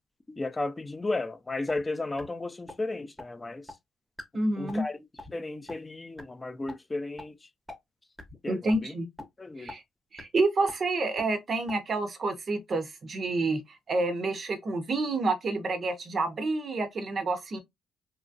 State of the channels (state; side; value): normal; both; correlation 0.85